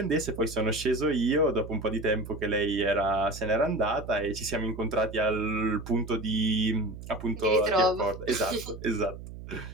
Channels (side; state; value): right; noise; hum, 12 dB below the sound